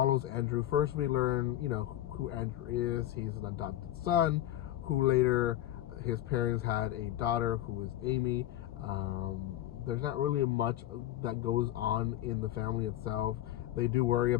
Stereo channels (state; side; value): quieter; right; 13.7 dB